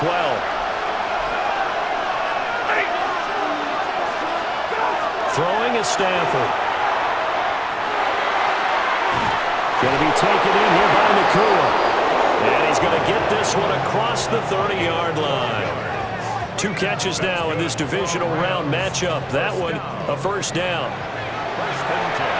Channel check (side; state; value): both; identical; correlation 1.00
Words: 12. Throwing is Stafford. Going to be taken in here by Nakua. And he's going to get this one across the 30-yard line. 2 catches now in this divisional round matchup. That one, a first down.